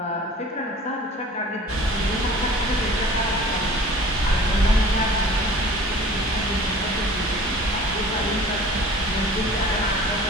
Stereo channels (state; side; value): normal; both; correlation 0.46